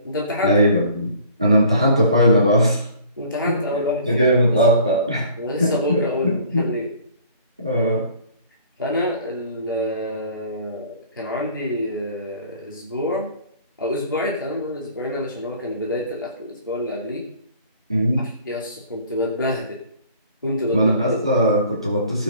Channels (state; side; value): inverted; both; correlation -0.51